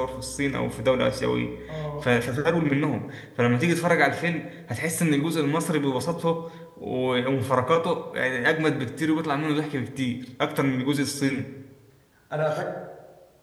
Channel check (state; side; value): identical; both; correlation 1.00